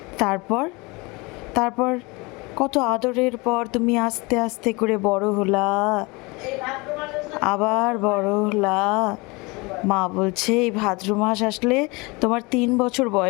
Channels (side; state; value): right; quieter; 25.9 dB